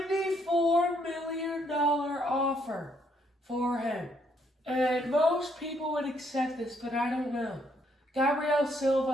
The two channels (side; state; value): both; normal; correlation 0.71